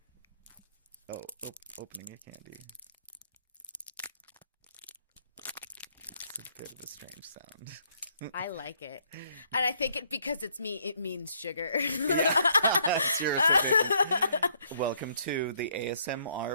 No. Opening a candy. It's a bit of a strange sound. I like it. And I think because it's me, it means sugar. Seriously. Welcome to the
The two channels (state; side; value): inverted; both; correlation -0.68